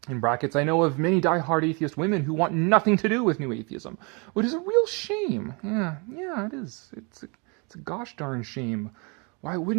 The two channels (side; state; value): left; quieter; 32.3 dB